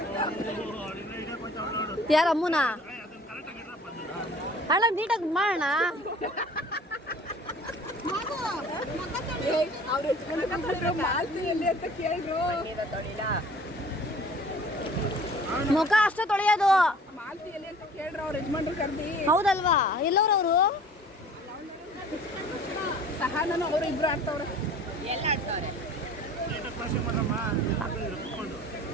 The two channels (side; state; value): both; normal; correlation 0.47